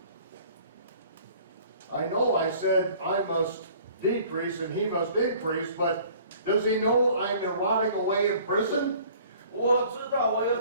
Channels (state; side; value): inverted; both; correlation -0.52